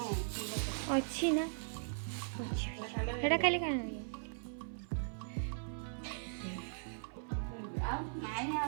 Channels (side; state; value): left; silent; 52 dB below the other